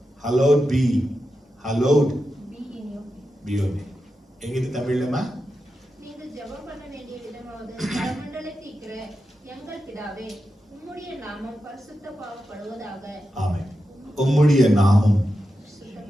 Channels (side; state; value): both; normal; correlation 0.89